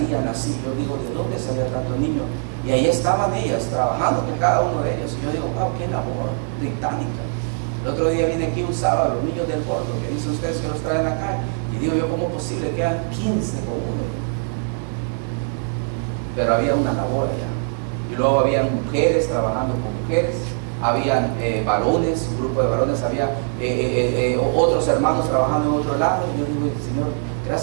así. Yo digo, ¿de dónde salían tantos niños? Y ahí estaban ellas trabajando con cada uno de ellos. Y yo digo, wow, qué labor titánica. El otro día vine aquí un sábado, los niños del Porto, que dicen ustedes que los traen acá. Y digo yo, ¿cómo es posible que eran 15 con uno? Pero había una labor allá. Y luego habían mujeres trabajando con mujeres. Habían varones, un grupo de varones, había otros hermanos trabajando en otro lado. Y yo digo, Señor,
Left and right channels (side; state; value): left; silent; 58 dB below the other